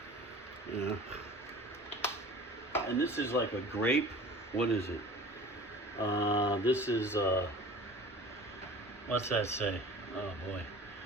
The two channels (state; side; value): normal; both; correlation 0.42